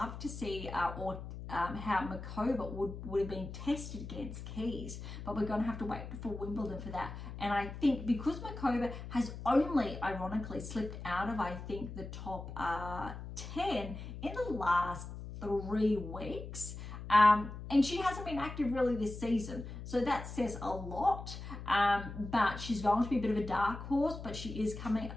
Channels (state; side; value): noise; left; hum, 10 dB below the sound